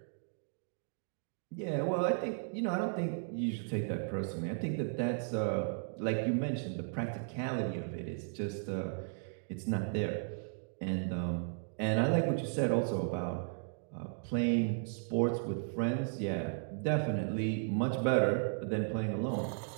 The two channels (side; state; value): left; silent; digital silence